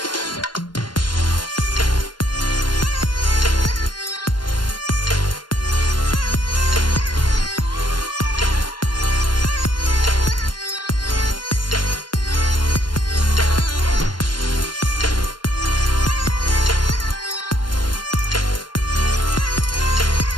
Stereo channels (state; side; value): late; right; 0.71 ms